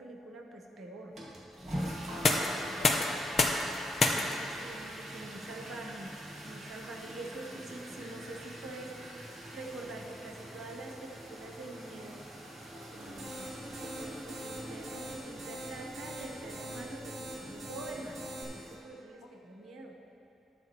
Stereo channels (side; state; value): both; normal; correlation 0.75